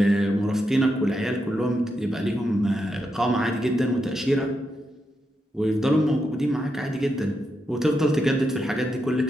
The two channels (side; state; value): both; normal; correlation 0.84